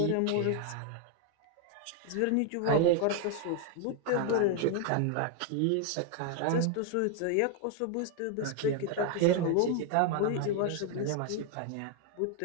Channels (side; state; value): both; different; correlation 0.00